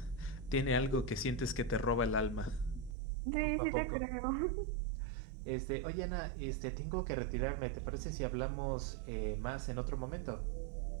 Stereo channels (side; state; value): left; drops out; at 3.0 s